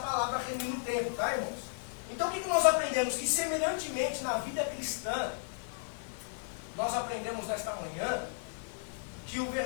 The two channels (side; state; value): right; silent; digital silence